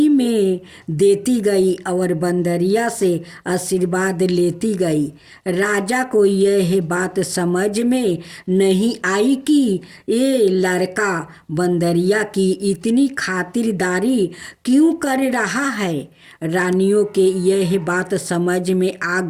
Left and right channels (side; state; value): both; identical; correlation 1.00